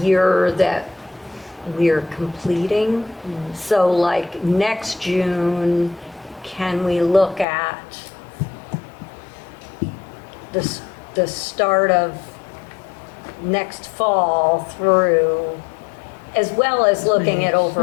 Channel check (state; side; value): drops out; right; at 7.5 s